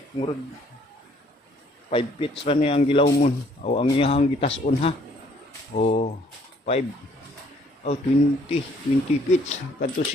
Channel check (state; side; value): normal; both; correlation 0.62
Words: murag 5 feet ra ni ang gilawmon. Aw ang iyang gitason ha. Oh, 5 oh 20 feet kadto